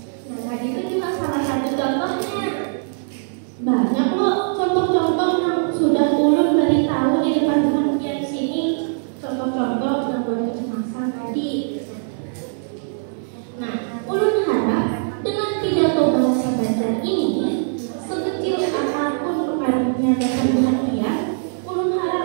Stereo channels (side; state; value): left; silent; digital silence